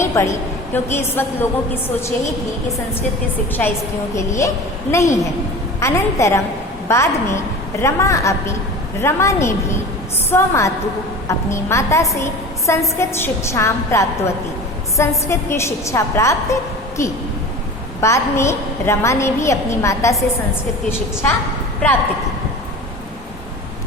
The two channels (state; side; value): normal; both; correlation 0.35